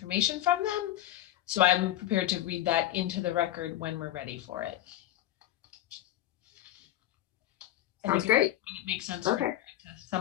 from them. So I'm prepared to read that into the record when we're ready for it. Sounds great. It makes sense Okay. to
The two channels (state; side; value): quieter; right; 13.4 dB